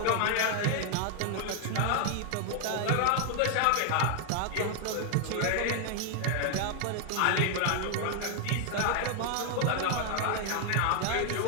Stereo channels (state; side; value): different; both; correlation 0.00